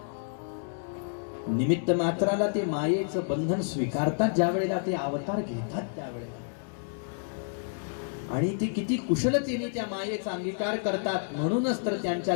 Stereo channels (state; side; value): silent; right; digital silence